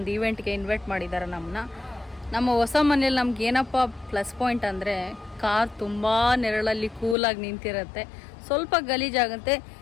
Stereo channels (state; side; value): drops out; right; at 7.2 s